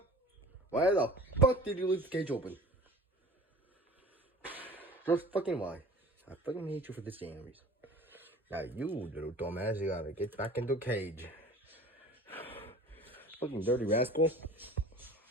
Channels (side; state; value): both; normal; correlation 0.42